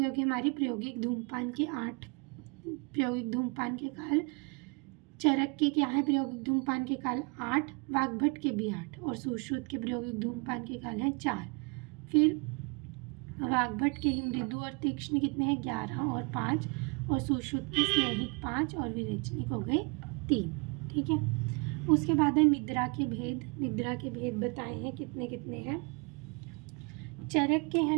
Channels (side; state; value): left; quieter; 32.5 dB